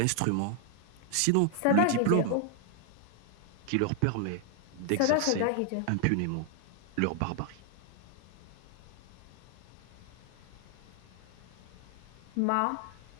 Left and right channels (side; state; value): both; different; correlation 0.00